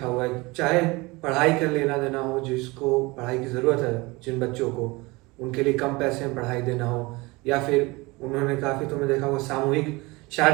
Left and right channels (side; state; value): left; quieter; 23.7 dB